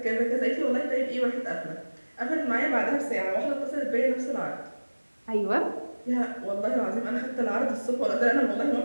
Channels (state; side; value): inverted; both; correlation -1.00